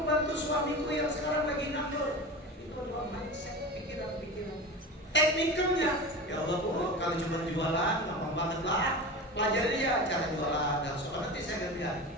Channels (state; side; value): normal; both; correlation 0.29